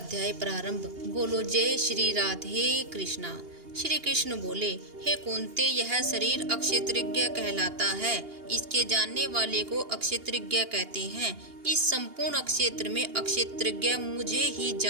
प्रारंभ। बोलो जय श्री राधे कृष्णा। श्री कृष्ण बोले, हे कुंती, यह शरीर अक्षेत्रज्ञ कहलाता है। इसके जानने वाले को अक्षेत्रज्ञ कहते हैं। इस संपूर्ण अक्षेत्र में अक्षेत्रज्ञ मुझे ही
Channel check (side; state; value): left; late; 2.8 ms